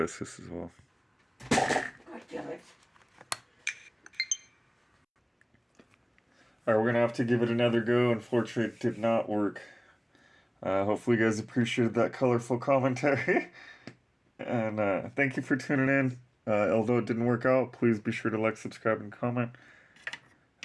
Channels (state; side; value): identical; both; correlation 1.00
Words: this as well. God damn it. Alright, we're gonna have to give it another go. Unfortunately, it did not work. Hopefully you guys appreciated that colorful commentary. And thank you for tuning in. Although it didn't work out, please be sure to like, subscribe, and comment.